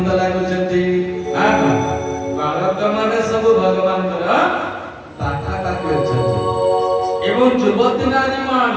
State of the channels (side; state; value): both; identical; correlation 1.00